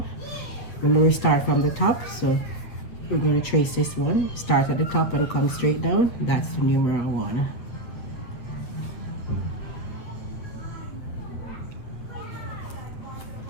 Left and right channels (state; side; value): late; right; 8.5 ms